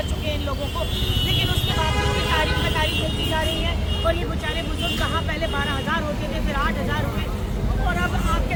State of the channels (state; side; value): identical; both; correlation 1.00